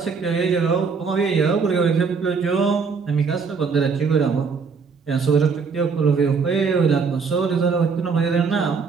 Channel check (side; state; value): left; quieter; 5.3 dB